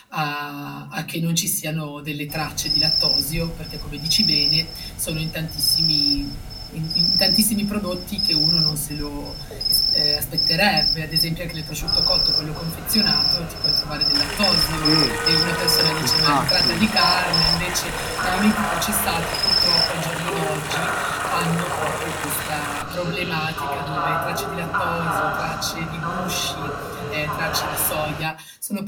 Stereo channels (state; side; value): identical; both; correlation 1.00